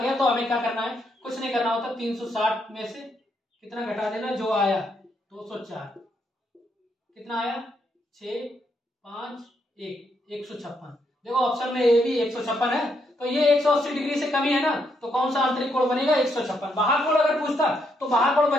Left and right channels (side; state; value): both; normal; correlation 0.77